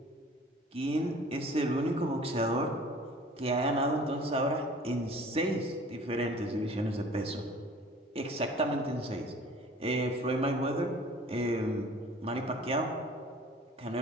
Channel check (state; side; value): normal; both; correlation 0.48